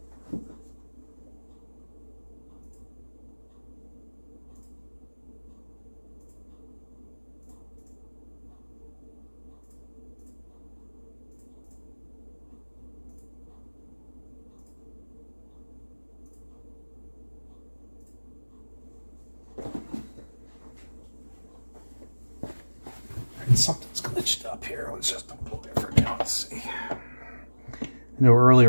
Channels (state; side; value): inverted; both; correlation -1.00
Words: Something's glitched up here. Let's just unplug it for now. Let's see. I know